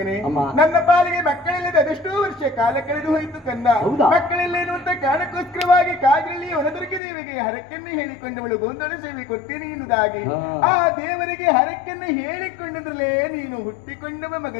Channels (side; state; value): right; drops out; at 7.0 s